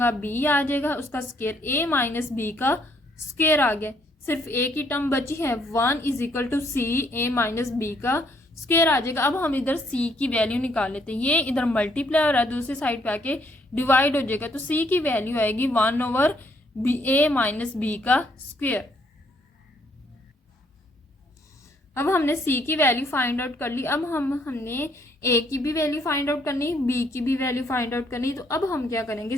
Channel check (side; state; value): both; normal; correlation 0.69